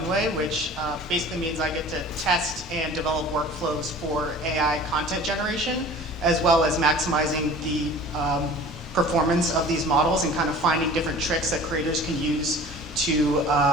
which basically means I get to test and develop workflows for AI content generation, as well as maximizing the performance of these models and kind of finding different tricks that creators can use to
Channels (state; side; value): normal; both; correlation 0.43